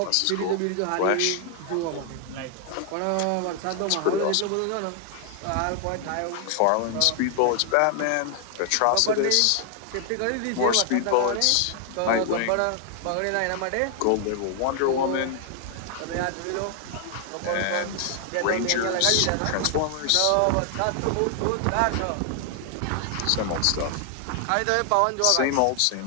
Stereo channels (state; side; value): different; both; correlation 0.00